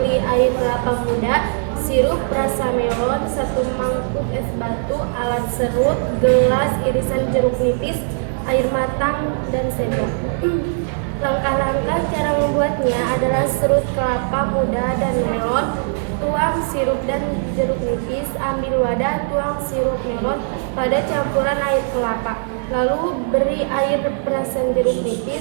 air kelapa muda, sirup rasa melon, 1 mangkuk es batu, alat serut, gelas irisan jeruk nipis, air matang, dan sendok. Langkah-langkah cara membuatnya adalah serut kelapa muda dan melon, tuang sirup dan jeruk nipis, ambil wadah, tuang sirup melon pada campuran air kelapa. Lalu beri air perasan jeruk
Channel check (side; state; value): left; silent; 66 dB below the other